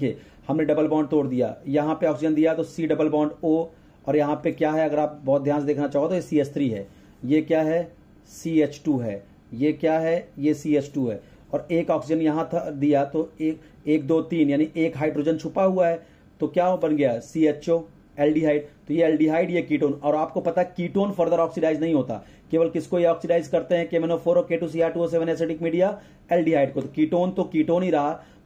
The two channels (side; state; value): both; identical; correlation 1.00